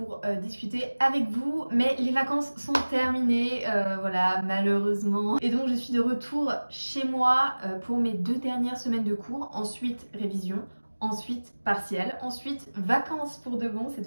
discuter avec vous, mais les vacances sont terminées, voilà, malheureusement. Et donc je suis de retour chez moi pour mes 2 dernières semaines de cours, ensuite révision, ensuite partiel, ensuite vacances pour de bon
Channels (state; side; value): inverted; both; correlation -1.00